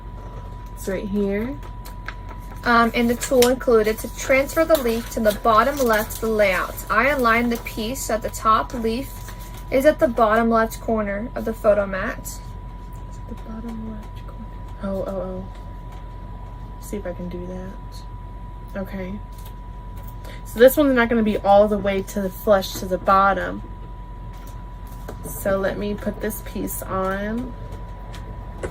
It's right here. And the tool included to transfer the leaf to the bottom left of the layout. I aligned the piece so that the top leaf is at the bottom left corner of the photo mat. The bottom left corner. Oh. See if I can do that. Okay. So this one's not going to be all the way to the flush to the bottom. So let me put this piece on.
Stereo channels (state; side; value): identical; both; correlation 1.00